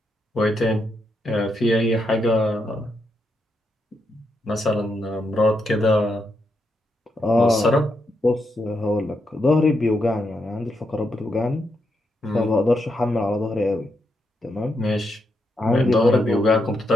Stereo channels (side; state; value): both; normal; correlation 0.82